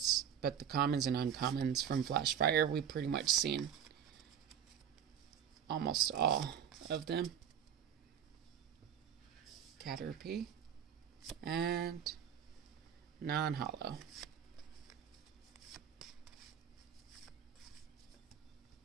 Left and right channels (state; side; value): quieter; left; 8.6 dB